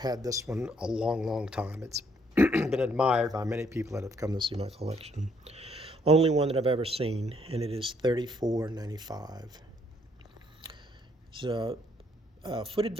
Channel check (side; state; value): both; normal; correlation 0.68